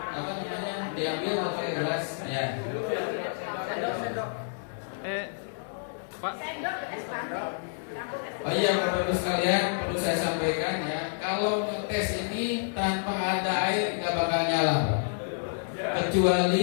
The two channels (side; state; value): right; silent; digital silence